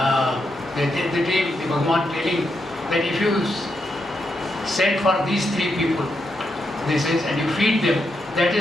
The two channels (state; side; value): normal; both; correlation 0.83